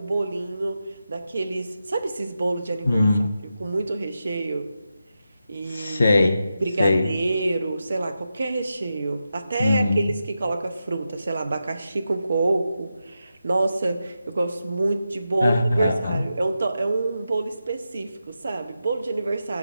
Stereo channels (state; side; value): inverted; both; correlation -0.89